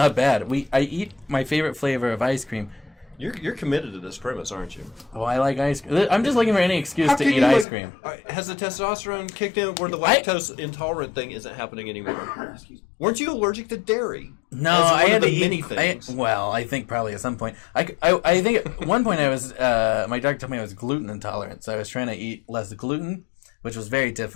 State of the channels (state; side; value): drops out; right; at 7.7 s